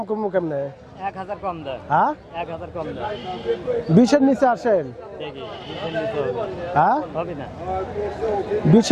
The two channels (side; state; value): both; identical; correlation 1.00